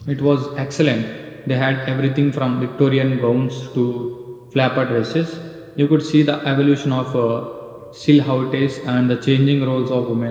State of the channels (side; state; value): both; identical; correlation 1.00